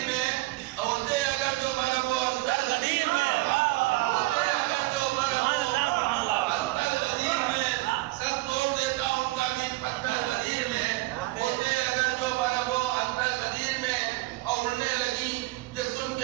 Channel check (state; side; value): quieter; left; 20.5 dB